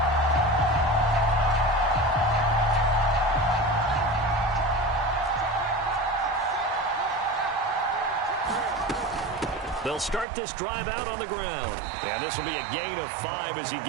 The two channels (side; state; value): left; drops out; at 10.2 s